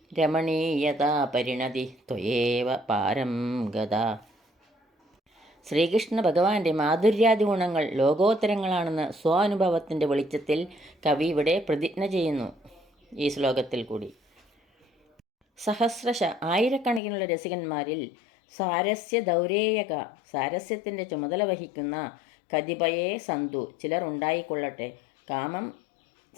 രമണീയതാ പരിണതി ത്വയേവ പാരം ഗത. ശ്രീകൃഷ്ണ ഭഗവാന്റെ മാധുര്യാദി ഗുണങ്ങൾ ലോകോത്തരങ്ങളാണെന്ന് സ്വാനുഭവത്തിൻ്റെ വെളിച്ചത്തിൽ കവി ഇവിടെ പ്രതിജ്ഞ ചെയ്യുന്നു ഈ ശ്ലോകത്തിൽ കൂടി. സഹസ്രശ, ആയിരക്കണക്കിനുള്ള രസികന്മാരിൽ, സാരസ്യ ദൗരേയക, സാരസ്യത്തിൻ്റെ ചുമതല വഹിക്കുന്ന, കതിപയേ സന്തു, ചിലർ ഉണ്ടായിക്കൊള്ളട്ടെ, കാമം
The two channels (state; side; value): drops out; right; at 17.0 s